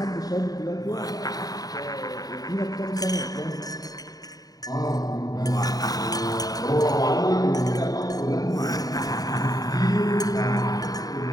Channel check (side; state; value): right; late; 0.18 ms